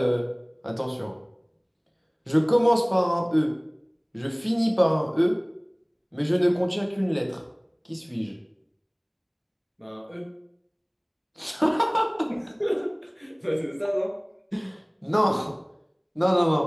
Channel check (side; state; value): both; identical; correlation 1.00